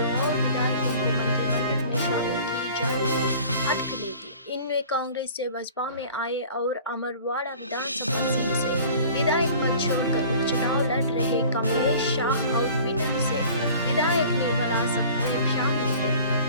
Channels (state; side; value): inverted; both; correlation -0.46